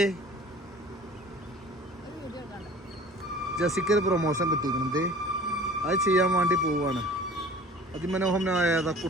ജസിക്കൊരു പ്രൊമോഷൻ കിട്ടിയിരിക്കണത്, അത് ചെയ്യാൻ വേണ്ടി പോവാണ്. അതിമനോഹരമായ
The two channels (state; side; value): normal; both; correlation 0.45